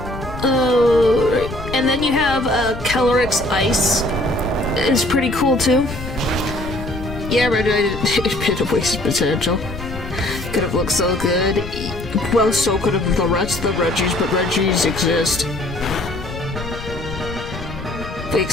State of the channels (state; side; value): noise; left; rumble, 10 dB below the sound